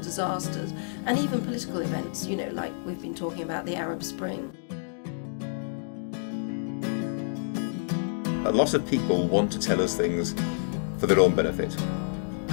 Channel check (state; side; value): silent; right; digital silence